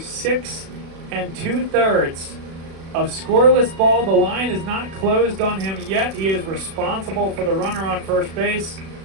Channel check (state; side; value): late; left; 36 ms